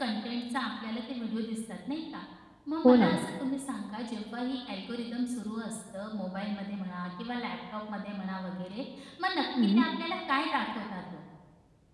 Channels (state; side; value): identical; both; correlation 1.00